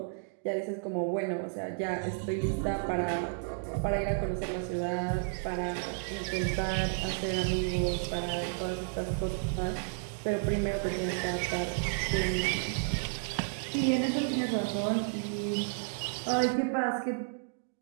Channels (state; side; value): silent; left; digital silence